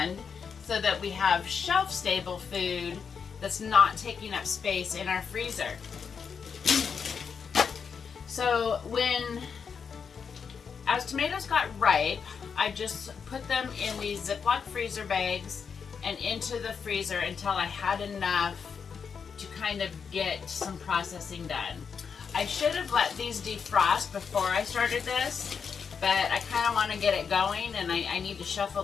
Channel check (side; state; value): right; quieter; 6.3 dB